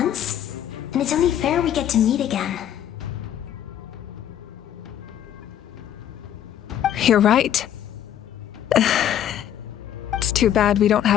then it's only fair we get to meet again. You're right. It's too bad we don't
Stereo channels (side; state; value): right; quieter; 10.6 dB